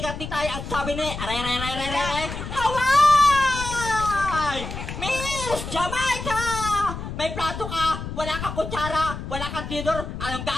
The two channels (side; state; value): left; noise; rumble, 7 dB below the sound